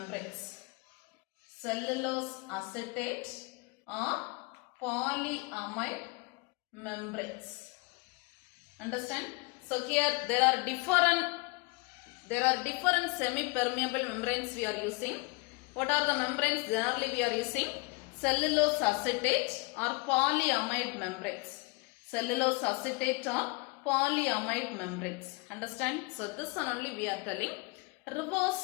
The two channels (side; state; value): right; quieter; 26.6 dB